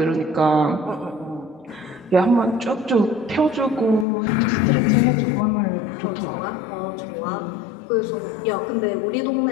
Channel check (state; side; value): drops out; right; at 4.0 s